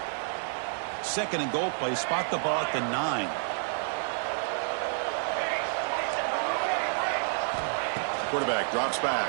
2nd and goal play, spot the ball at the 9. Quarterback drops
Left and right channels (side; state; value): left; silent; digital silence